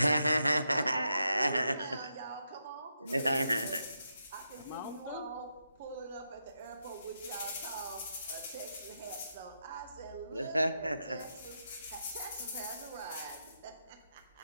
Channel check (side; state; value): both; inverted; correlation -0.83